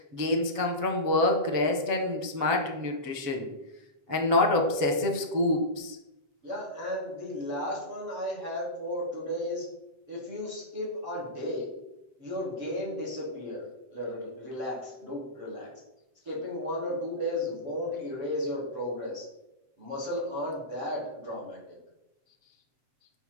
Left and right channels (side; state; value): left; late; 7.7 ms